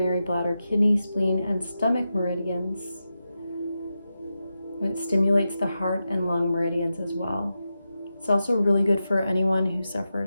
bladder, kidney, spleen, and stomach meridians. It stimulates the heart and lung meridians as well. It's also really good for anyone who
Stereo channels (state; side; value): inverted; both; correlation -0.90